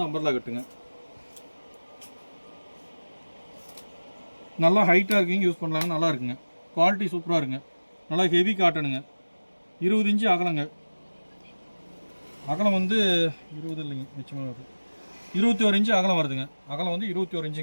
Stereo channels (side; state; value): both; inverted; correlation -1.00